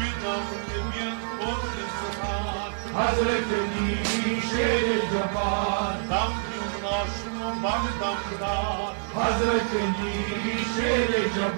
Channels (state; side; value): silent; left; digital silence